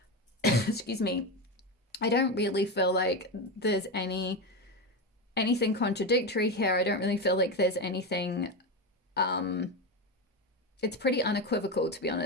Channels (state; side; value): normal; both; correlation 0.15